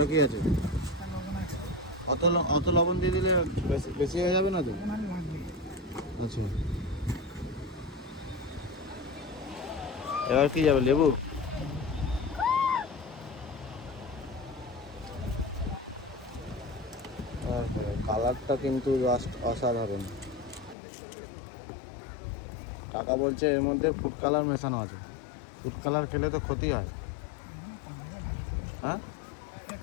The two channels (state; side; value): drops out; right; at 20.8 s